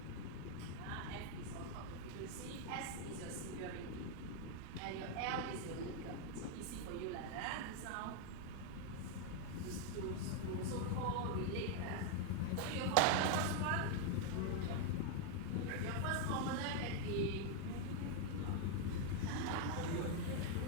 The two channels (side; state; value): both; different; correlation 0.00